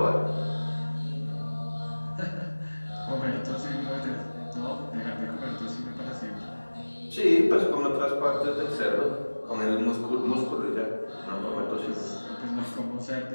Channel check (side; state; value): both; inverted; correlation -1.00